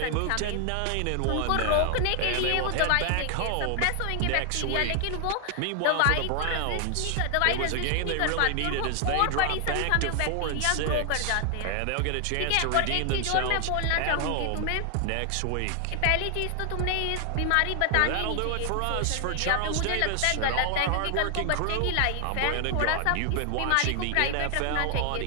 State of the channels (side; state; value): both; different; correlation 0.00